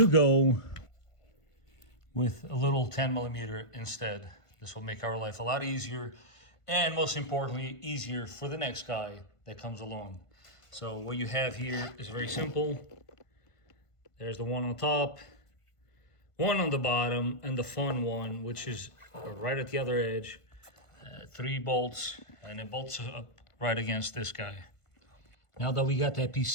go with a little 10mm instead. This will make our life a lot easier, and most importantly, easier for the next guy that comes along. So what you have here is very simple. There's the one on top, one on the bottom, and the fun one, which is right at the other edge. 3 bolts, and it bolts up right against this guy. Now that we got that piece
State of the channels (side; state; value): right; late; 1.5 ms